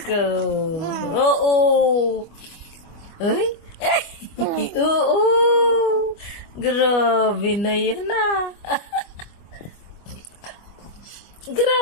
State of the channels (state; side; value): late; right; 25 ms